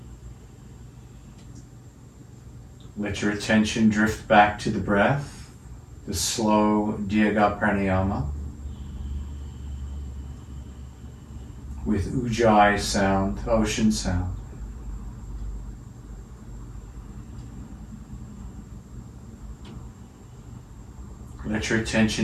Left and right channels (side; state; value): both; identical; correlation 1.00